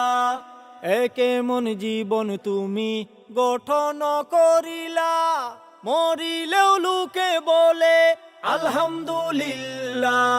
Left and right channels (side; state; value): both; identical; correlation 1.00